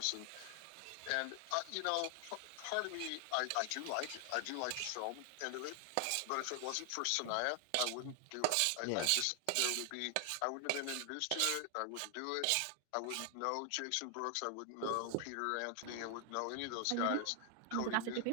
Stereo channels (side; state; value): both; different; correlation 0.00